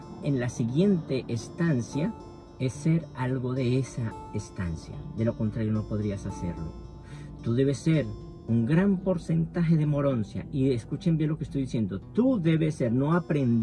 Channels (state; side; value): identical; both; correlation 1.00